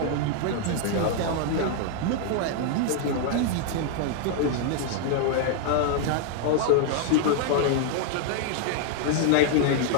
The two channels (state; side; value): different; both; correlation 0.00